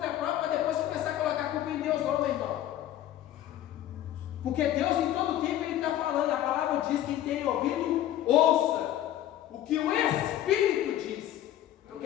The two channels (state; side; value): quieter; right; 12.4 dB